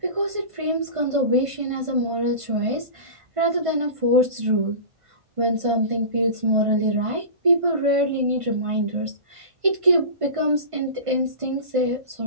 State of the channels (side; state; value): left; late; 1.5 ms